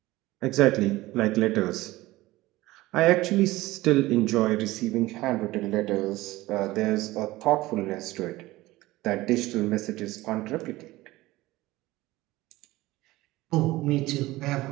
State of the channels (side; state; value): left; quieter; 18.5 dB